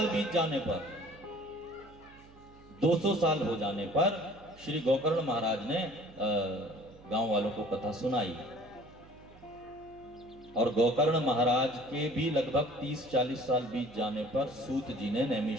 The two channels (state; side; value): noise; right; hum, 23 dB below the sound